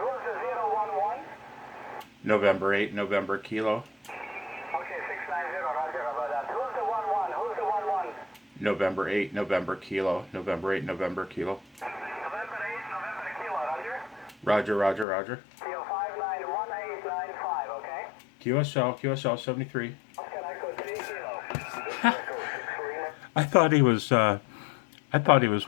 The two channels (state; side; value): drops out; right; at 15.1 s